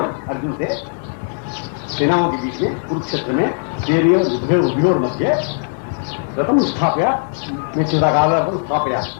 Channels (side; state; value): right; silent; digital silence